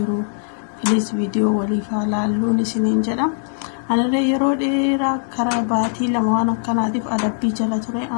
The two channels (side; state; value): right; silent; digital silence